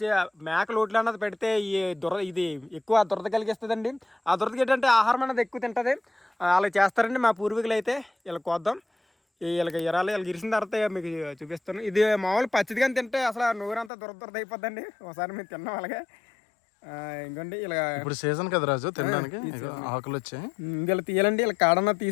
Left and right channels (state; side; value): drops out; right; at 13.9 s